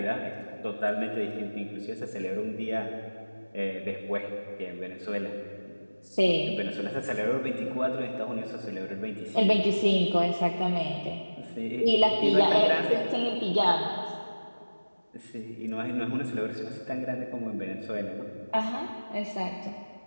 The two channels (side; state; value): both; inverted; correlation -1.00